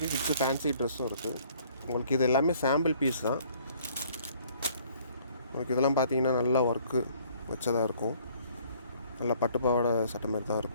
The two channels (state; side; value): inverted; both; correlation -0.59